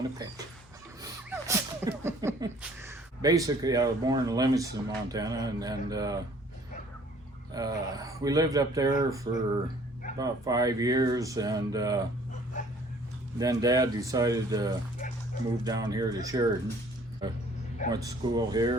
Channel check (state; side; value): normal; both; correlation 0.56